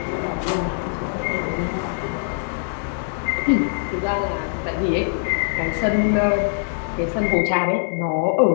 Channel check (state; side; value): silent; right; 64 dB below the other